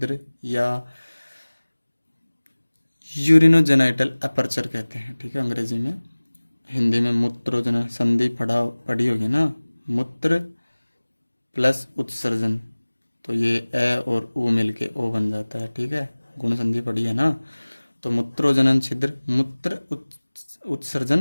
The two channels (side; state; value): both; inverted; correlation -1.00